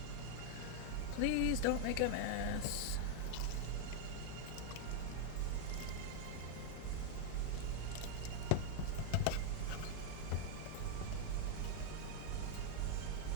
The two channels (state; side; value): different; both; correlation 0.00